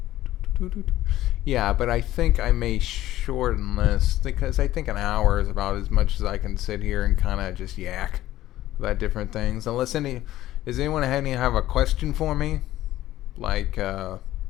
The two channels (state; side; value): quieter; right; 14.7 dB